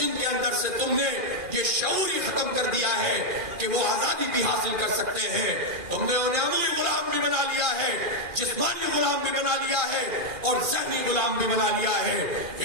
کے اندر سے تم نے یہ شعور ہی ختم کر دیا ہے کہ وہ آزادی بھی حاصل کر سکتے ہیں. تم نے انہیں عملی غلام بھی بنا لیا ہے, جسمانی غلام بھی بنا لیا ہے اور ذہنی غلام بھی بنا لیا ہے.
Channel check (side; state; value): left; late; 2.4 ms